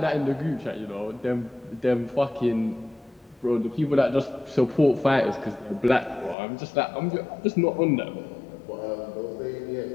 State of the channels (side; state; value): right; drops out; at 6.4 s